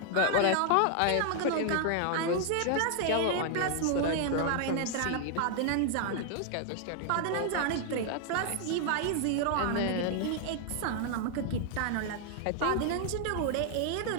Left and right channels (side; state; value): both; different; correlation 0.00